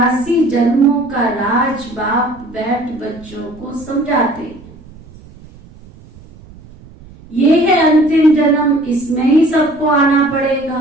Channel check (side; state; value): right; noise; rumble, 22 dB below the sound